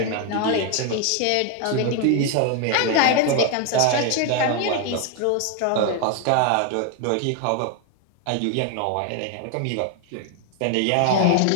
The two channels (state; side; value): different; both; correlation 0.01